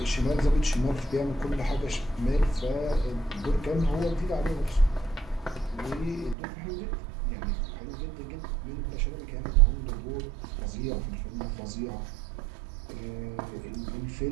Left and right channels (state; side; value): drops out; left; at 6.4 s